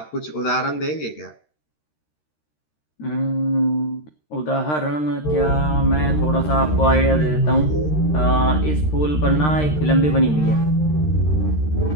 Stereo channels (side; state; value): right; late; 13 ms